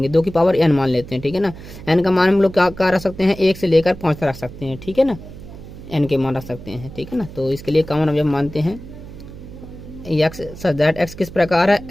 2 की पावर n मान लेते हैं। ठीक है ना। n का मान हम लोग क्या रख सकते हैं, 1 से लेकर 5 तक रख सकते हैं। ठीक है ना, n के मान रख सकते हैं। ठीक है ना। तो इसके लिए कॉमन अवयव मानते हैं एक्स, सच दैट एक्स किस प्रकार है,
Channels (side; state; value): right; noise; hum, 15 dB below the sound